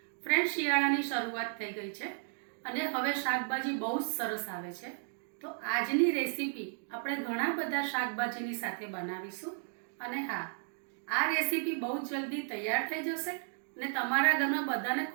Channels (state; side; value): silent; left; 55 dB below the other